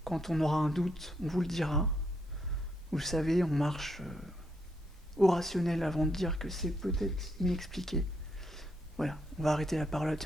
Quand on aura un doute, on vous le dira. Vous le savez, on marche au rationnel avant de dire que c'est peut-être inexpliqué. Voilà, on va arrêter la parlotte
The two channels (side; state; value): both; normal; correlation 0.77